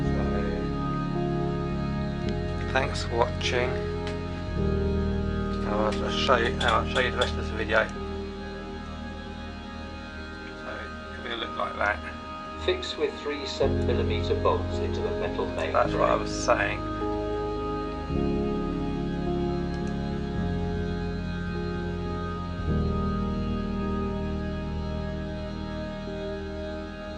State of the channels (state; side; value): identical; both; correlation 1.00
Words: So, thanks for watching. I'll show you the rest of the video. So it will look like that. Fix with 3 7mm bolts into the metal main That's frame. what I was saying.